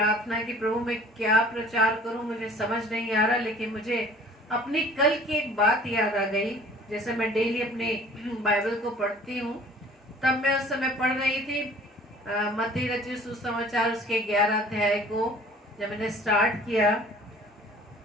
की, प्रभु मैं क्या प्रचार करूं, मुझे समझ नहीं आ रहा. लेकिन मुझे अपनी कल की एक बात याद आ गई. जैसे मैं डेली अपने बाइबल को पढ़ती हूँ तब मैं उस समय पढ़ रही थी मत्ती रचित सुसमाचार उसके 11 अध्याय को जब मैंने स्टार्ट किया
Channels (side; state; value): both; normal; correlation 0.50